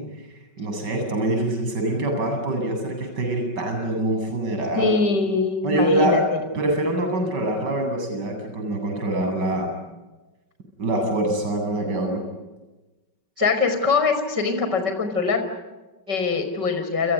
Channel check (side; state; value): left; late; 5.2 ms